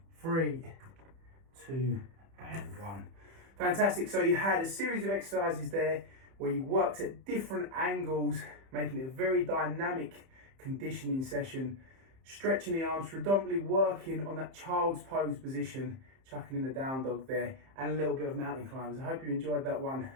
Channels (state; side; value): late; left; 30 ms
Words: 3, 2, and 1. Fantastic. So you had a series of exercises there where you worked at different angles, making it a very dynamic conditioning session, stretching the arms, predominantly working on that child's pose position, chucking in the down dog there, and a little bit of mountain climbers. I hope you enjoyed that one,